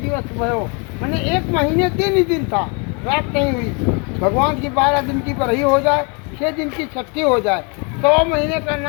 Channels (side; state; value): right; quieter; 33.7 dB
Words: भयो, मैंने 1 महीने दिन ही दिन था, रात नहीं हुई। भगवान की 12 दिन की बरही हो जाए, 6 दिन की छठी हो जाए, 100 महीने का